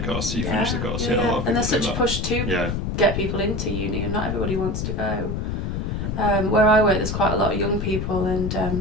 course, so you finished the course. Yeah. And there's such a push to get people into uni, and not everybody wants to go. Where I work, there's quite a lot of young people,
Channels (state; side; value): noise; left; rumble, 2 dB below the sound